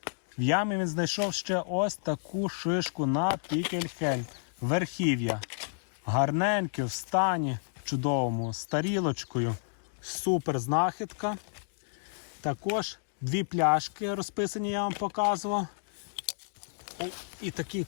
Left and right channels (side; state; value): right; silent; digital silence